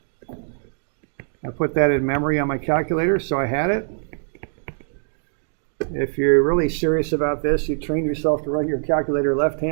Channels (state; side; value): silent; left; digital silence